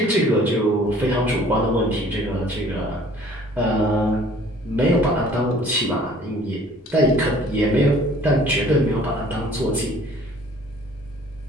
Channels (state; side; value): normal; both; correlation 0.53